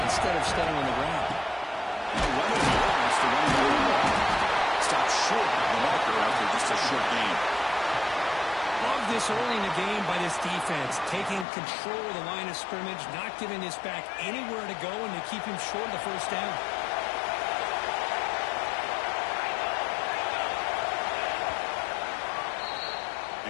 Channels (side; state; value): right; drops out; at 11.5 s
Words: instead of staying on the ground. No running here. That's the running game. Stop short of the marker after just a short gain. Love this early in the game by this defense, taking control of the line of scrimmage, not giving this back anywhere to go, and to keep him short of the 1st down.